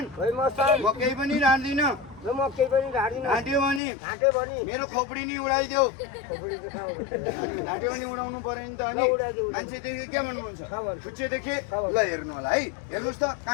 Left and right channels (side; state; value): right; drops out; at 3.8 s